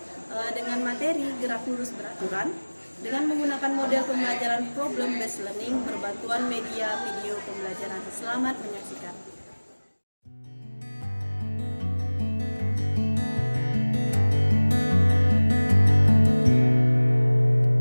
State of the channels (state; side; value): inverted; both; correlation -1.00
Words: dengan materi gerak lurus beraturan dengan menggunakan model pembelajaran problem based learning berbantuan media video pembelajaran. Selamat menyaksikan.